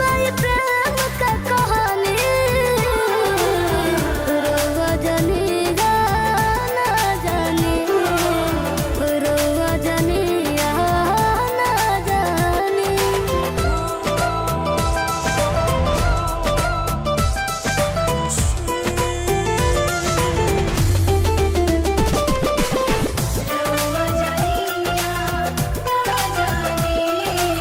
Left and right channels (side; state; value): both; identical; correlation 1.00